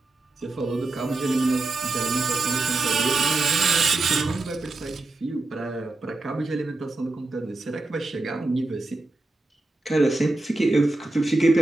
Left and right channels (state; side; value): quieter; left; 3.1 dB